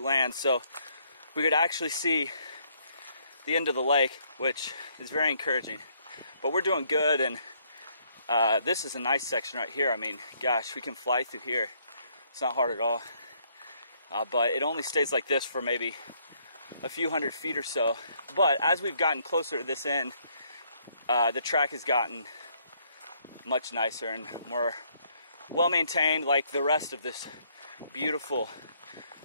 So we could actually see the end of the lake, which is very encouraging. But we're doing good, and this is a nice section right here. I mean, gosh, we can fly through here. It's not hard at all. But it only stays like this for maybe a few hundred feet or so. But as we've gotten closer to this end, the track has gotten much nicer and more well-maintained, like the rest of this beautiful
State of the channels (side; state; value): both; inverted; correlation -0.68